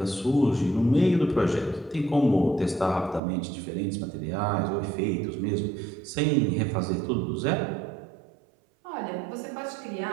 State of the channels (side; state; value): left; drops out; at 3.2 s